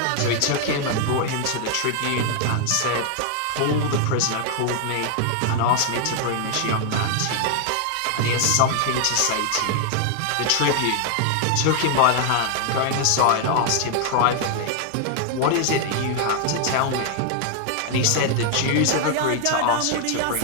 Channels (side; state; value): both; different; correlation 0.00